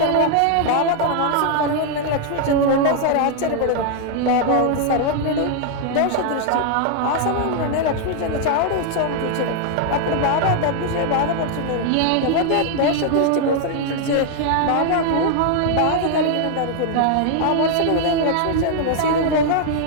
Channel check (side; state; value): both; different; correlation 0.00